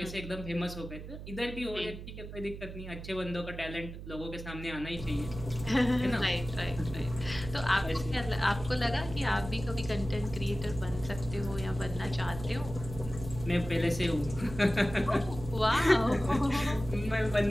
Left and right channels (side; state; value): right; noise; hum, 11 dB below the sound